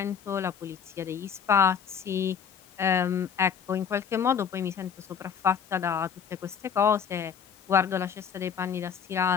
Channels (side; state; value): right; quieter; 7.3 dB